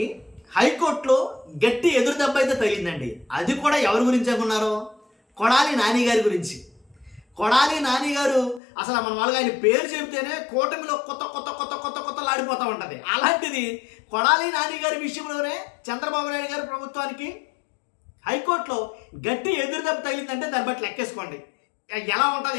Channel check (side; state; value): right; drops out; at 8.6 s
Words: హైకోర్టులో గట్టి ఎదురు దెబ్బ అయితే తగిలిందండి. అది కూడా ఎవరి గురించి అనుకున్నారో, కొడాలి నాని గారి గురించి. కొడాలి నాని గారు అసలు మన వాళ్ళగా ఆయన పేరు చెబితేనే కూటమిలో కొత్త కొత్త కొత్త కొత్త కొత్తలాడిపోతూ ఉంటుంది. అలాంటిది కొడాలి నాని గారి విషయంలోనే చంద్రబాబు నాయుడు గారి ప్రభుత్వానికి హైకోర్టులో గట్టి ఎదురు దెబ్బ తగిలిందంటే దాన్ని బట్టి లెక్కేసుకోండి ఎలా ఉంటుంది